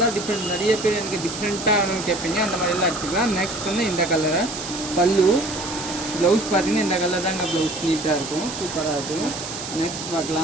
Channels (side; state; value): right; noise; hiss, 8 dB below the sound